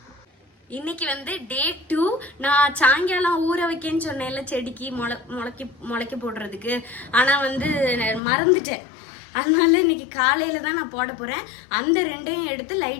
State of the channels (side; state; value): right; drops out; at 8.2 s